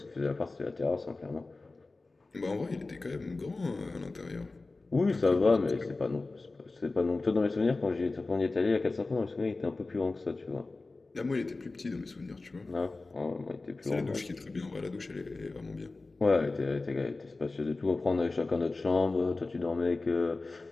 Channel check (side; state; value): right; quieter; 3.4 dB